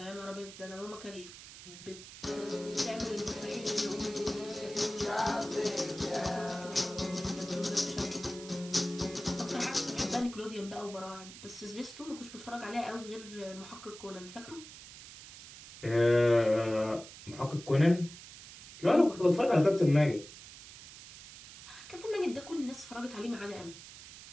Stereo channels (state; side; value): noise; right; hiss, 15 dB below the sound